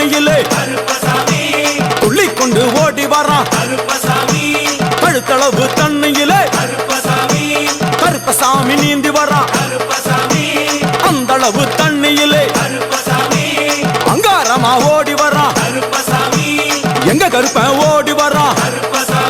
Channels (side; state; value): both; identical; correlation 1.00